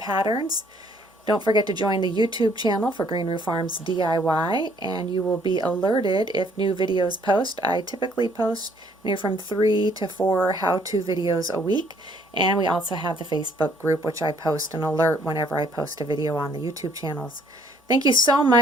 Don't forget to join the YouTube channel for Green Roof Farms DIY, and you will be alerted if new videos post. I typically post from 3 to 4 how-to videos a week, and we also have the Facebook group, which I post an alert whenever I post a video on the YouTube channels. Thank you so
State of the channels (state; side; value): normal; both; correlation 0.63